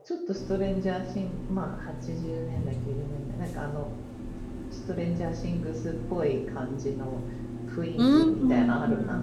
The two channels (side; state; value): both; identical; correlation 1.00